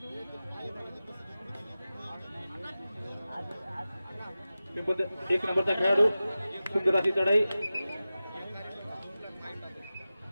पिंपळदरी 1 नंबरचा खेळाडू सुंदर अशी चढाई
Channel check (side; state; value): both; inverted; correlation -0.95